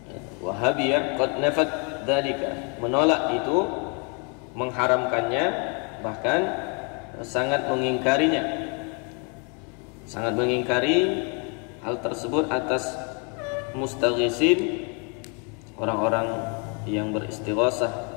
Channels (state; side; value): quieter; right; 36.2 dB